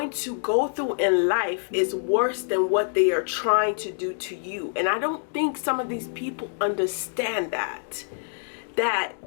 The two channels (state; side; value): silent; right; digital silence